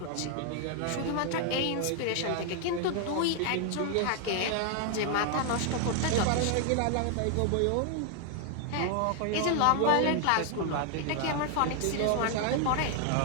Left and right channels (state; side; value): different; both; correlation 0.00